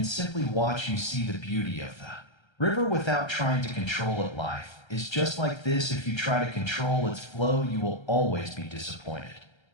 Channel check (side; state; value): right; late; 1.3 ms